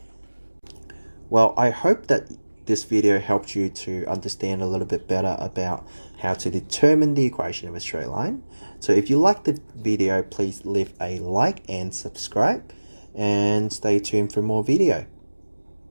Well, I hope that this video helped you to understand a little bit better about how to determine the equation of a straight line. So if you liked the video, please leave a like and subscribe, and stay tuned for more video.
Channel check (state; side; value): inverted; both; correlation -1.00